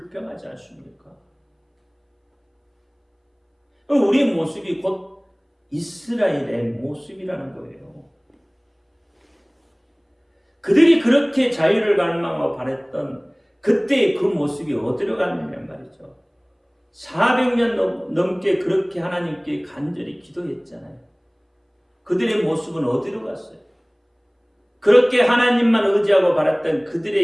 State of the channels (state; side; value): identical; both; correlation 1.00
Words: 않습니까? 우리의 모습이 곧 이스라엘의 모습이라는 거예요. 그들이 그렇게 자유를 갈망하고 바랬던 그때의 그 모습이 어디로 갔느냐 말이죠. 400년 넘게 그렇게 하나님께 간절히 기도했잖아요. 그들의 모습은 어디로 갔어요? 그렇게 하나님만 의지하고 바랐던